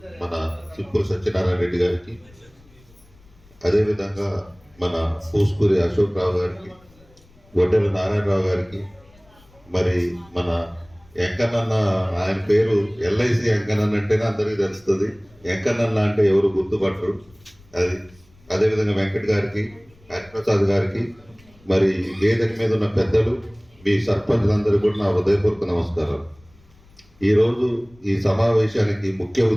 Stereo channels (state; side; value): noise; left; rumble, 28 dB below the sound